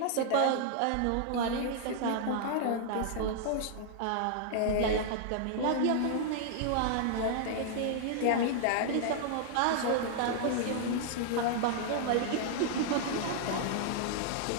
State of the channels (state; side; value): different; both; correlation -0.01